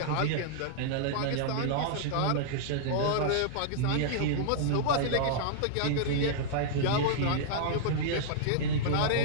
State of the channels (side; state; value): both; different; correlation -0.01